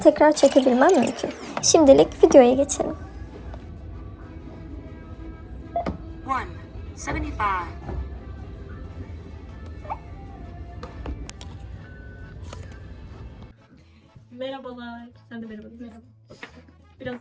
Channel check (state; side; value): identical; both; correlation 1.00